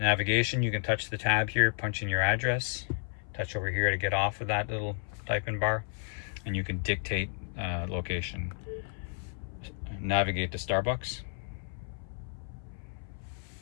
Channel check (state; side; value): silent; right; 56 dB below the other